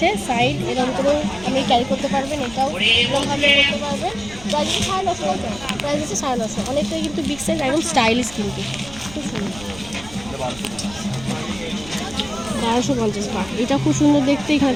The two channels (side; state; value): right; noise; rumble, 18 dB below the sound